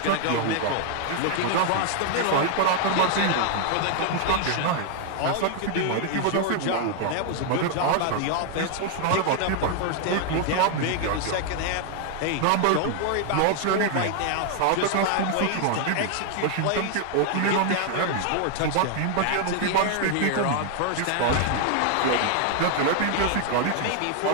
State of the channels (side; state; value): both; different; correlation 0.00